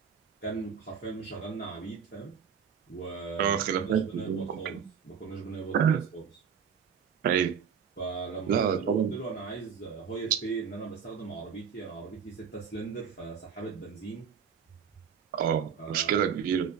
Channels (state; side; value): quieter; left; 7.2 dB